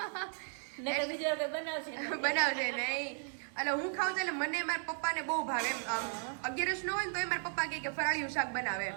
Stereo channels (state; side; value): silent; left; 54 dB below the other